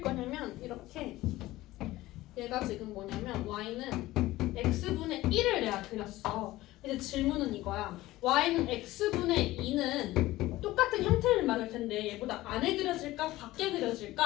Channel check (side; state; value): right; quieter; 17.3 dB